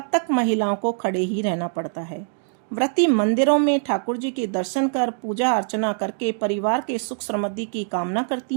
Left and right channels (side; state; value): left; silent; digital silence